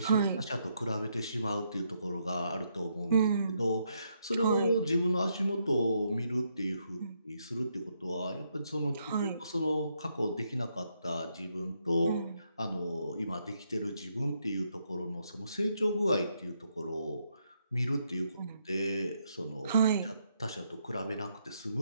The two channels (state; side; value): inverted; both; correlation -0.77